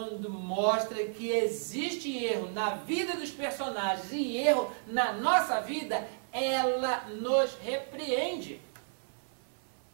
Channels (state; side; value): silent; left; 56 dB below the other